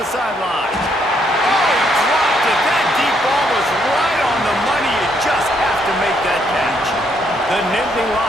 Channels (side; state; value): both; normal; correlation 0.72